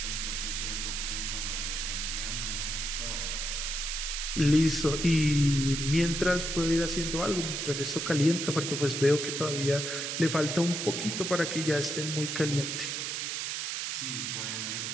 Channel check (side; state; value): right; noise; hiss, 2 dB below the sound